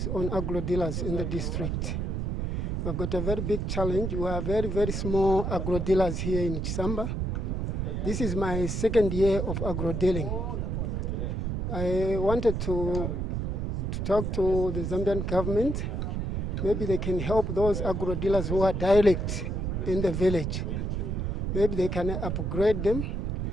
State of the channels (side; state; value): right; noise; rumble, 1 dB below the sound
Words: on agro-dealers in the district. We've got a very big challenge. We are very, very small agro-dealers here in Zambia. This is my second year of agro-dealing. I wanted to talk to the Zambian government. Maybe they can help those agro-dealers who are direct in the village. Maybe they can upgrade them,